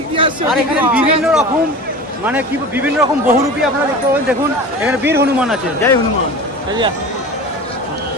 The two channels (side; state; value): both; normal; correlation 0.33